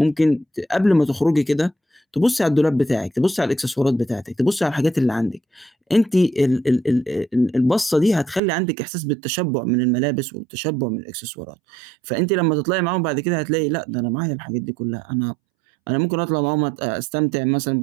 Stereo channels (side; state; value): left; drops out; at 8.4 s